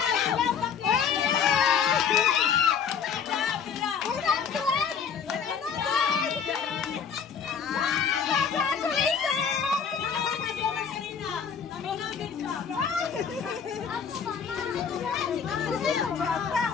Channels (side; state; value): right; quieter; 6.9 dB